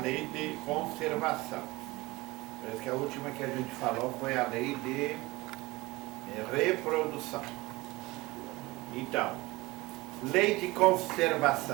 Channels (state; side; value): quieter; left; 21.3 dB